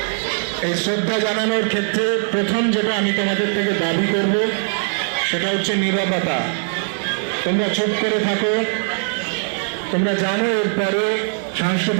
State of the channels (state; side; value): silent; left; 57 dB below the other